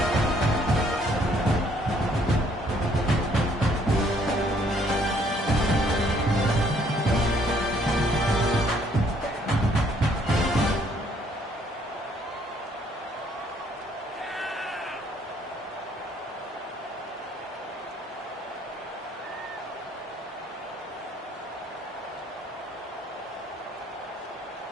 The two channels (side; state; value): both; normal; correlation 0.64